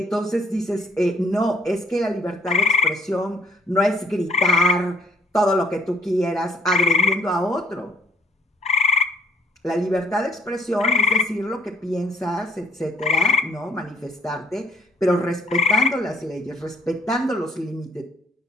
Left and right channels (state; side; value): normal; both; correlation 0.61